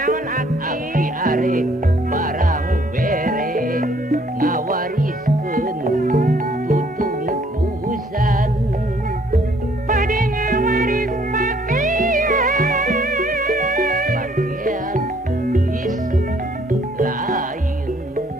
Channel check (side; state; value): both; normal; correlation 0.63